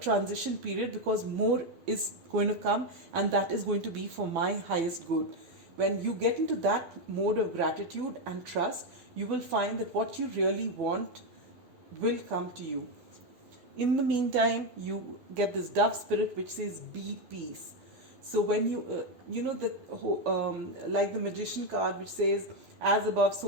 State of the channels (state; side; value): late; left; 12 ms